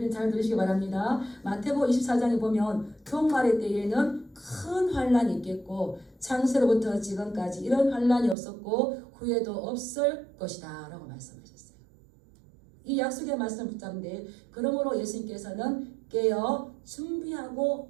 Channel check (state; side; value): drops out; left; at 8.3 s